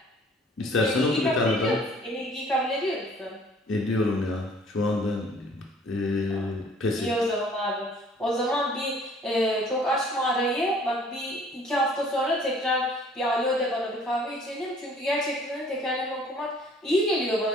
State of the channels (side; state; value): both; normal; correlation 0.55